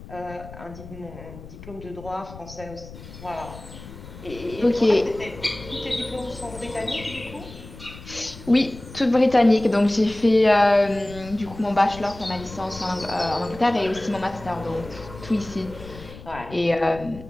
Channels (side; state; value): left; noise; rumble, 16 dB below the sound